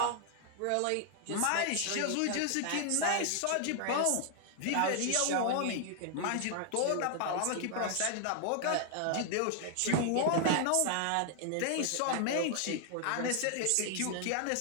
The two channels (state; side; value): different; both; correlation 0.00